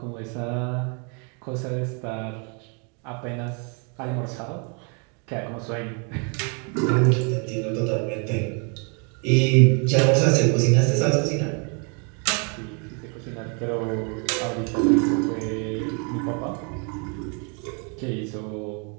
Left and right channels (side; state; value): left; quieter; 36.9 dB